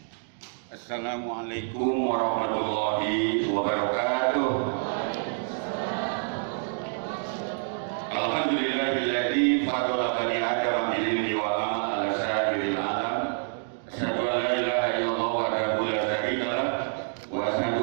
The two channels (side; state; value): left; silent; digital silence